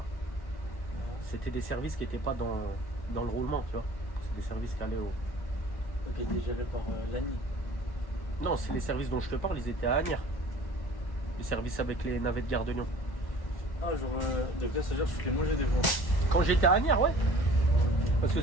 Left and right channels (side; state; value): right; late; 1.1 ms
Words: c'était des services qui n'étaient pas dans le roulement, tu vois. C'est des services qui allaient au. Ok, il est géré par l'ANI. Non, c'est les services dont je te parle, ils étaient à Agnières. Les services avec les navettes Gare de Lyon. Ah, genre, des passagers, je les mangeais des fois. Quand j'étais à Agnières, ouais. Parce que